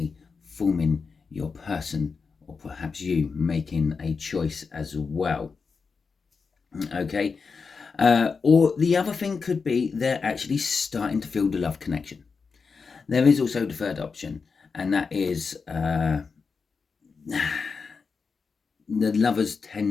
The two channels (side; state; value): right; quieter; 5.1 dB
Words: forming your person, or perhaps you making a choice as well. Okay. Or the other thing could be they're actually starting to feel the love connection. There is also the third option, and that is the lovers